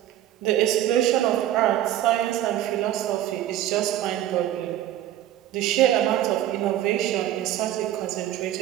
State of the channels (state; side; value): quieter; left; 12.7 dB